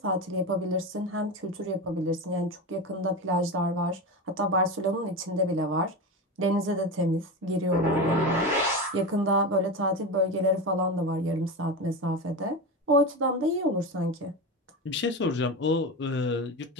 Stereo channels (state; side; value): normal; both; correlation 0.21